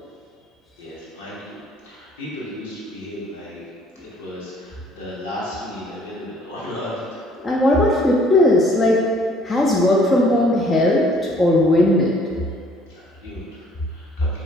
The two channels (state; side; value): normal; both; correlation 0.59